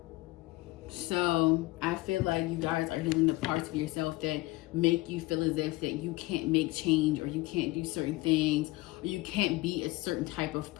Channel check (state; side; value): quieter; right; 20.4 dB